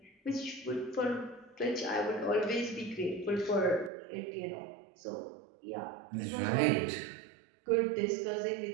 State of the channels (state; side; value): drops out; left; at 3.9 s